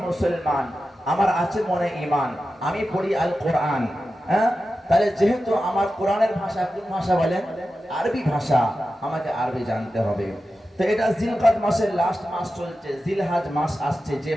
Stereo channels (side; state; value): both; normal; correlation 0.92